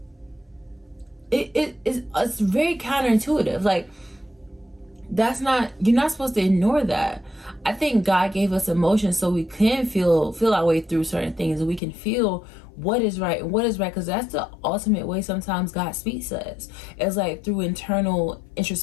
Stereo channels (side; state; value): right; drops out; at 11.8 s